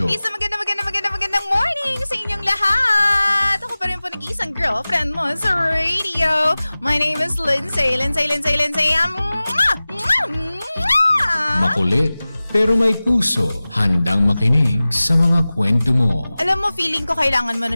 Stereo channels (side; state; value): both; inverted; correlation -0.98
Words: Isang magandang morning sa inyong lahat! Ako pa rin po nag-iisang girlfriend mo sa radio. My name is Lindsay. Makulit pero may puso, handang makinig sa mga kwento mo. Alam mo, feeling ko kailangan mo na